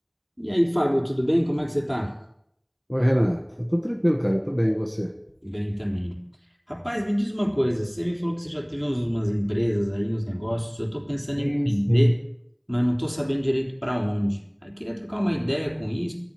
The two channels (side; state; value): both; identical; correlation 1.00